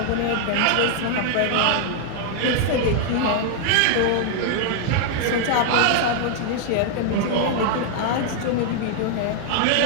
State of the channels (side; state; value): both; different; correlation 0.00